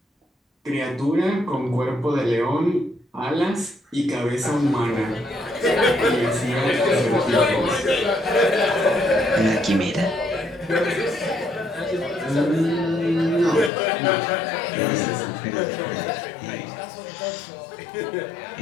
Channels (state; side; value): drops out; right; at 13.7 s